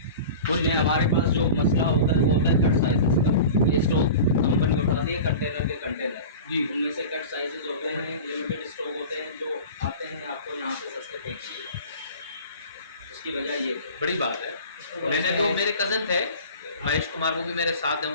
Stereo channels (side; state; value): both; inverted; correlation -0.36